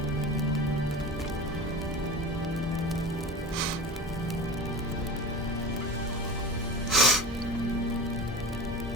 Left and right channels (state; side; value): normal; both; correlation 0.30